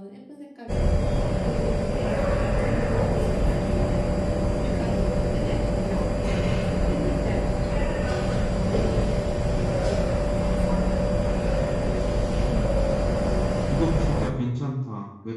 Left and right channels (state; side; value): identical; both; correlation 1.00